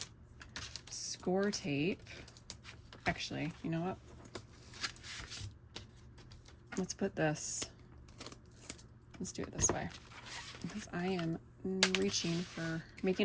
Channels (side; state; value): both; identical; correlation 1.00